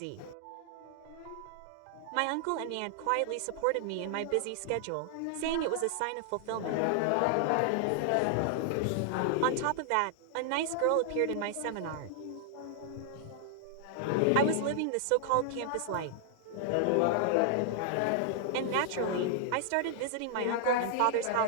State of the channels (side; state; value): both; different; correlation 0.00